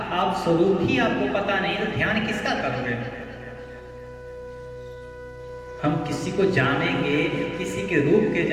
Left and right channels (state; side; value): identical; both; correlation 1.00